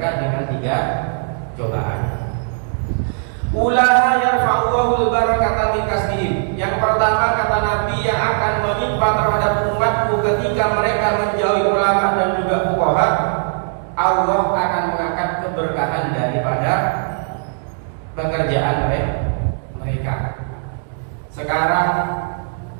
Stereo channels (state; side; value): silent; left; digital silence